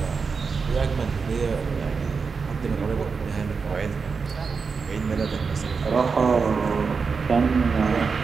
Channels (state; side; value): quieter; left; 5.1 dB